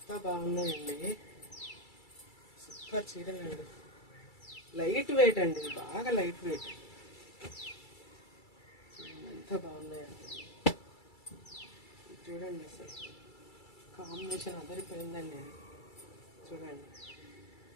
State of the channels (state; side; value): late; right; 2.3 ms